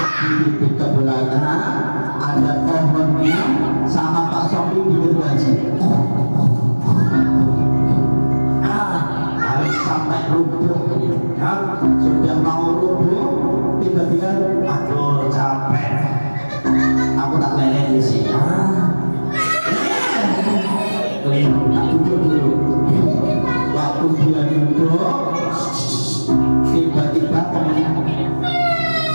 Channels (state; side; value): inverted; both; correlation -1.00